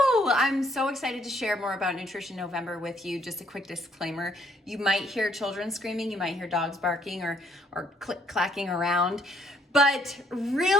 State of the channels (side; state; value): both; normal; correlation 0.66